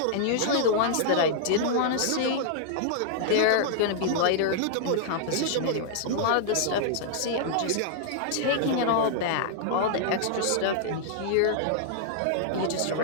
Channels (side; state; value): both; different; correlation -0.01